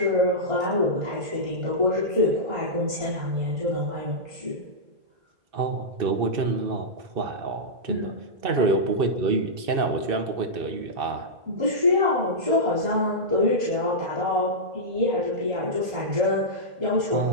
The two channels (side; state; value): left; late; 2.6 ms